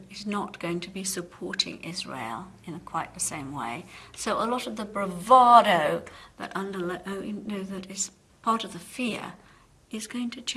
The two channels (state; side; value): identical; both; correlation 1.00